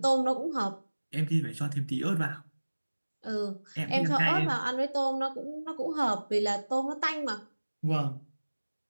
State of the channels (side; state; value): both; inverted; correlation -1.00